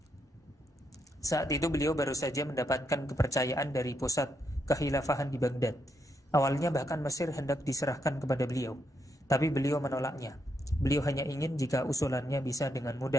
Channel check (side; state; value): both; normal; correlation 0.79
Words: Saat itu beliau baru saja mendapatkan kepercayaan dari pusat kekhilafahan di Baghdad. Awalnya bahkan Mesir hendak diserahkan kepada beliau, tapi beliau menolaknya. Beliau hanya ingin jika usulannya bisa dengan